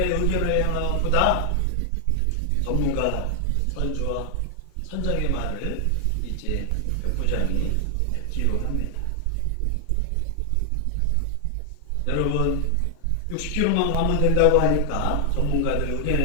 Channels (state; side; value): different; both; correlation 0.00